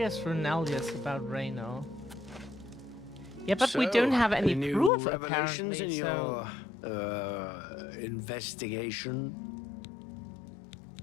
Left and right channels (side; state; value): right; drops out; at 4.9 s